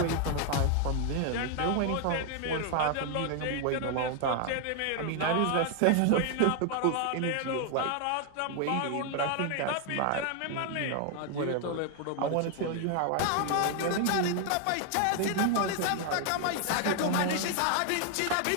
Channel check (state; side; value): different; both; correlation 0.00